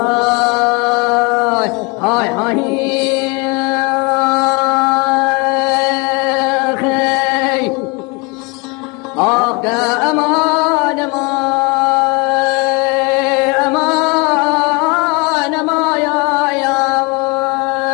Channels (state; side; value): quieter; right; 28.9 dB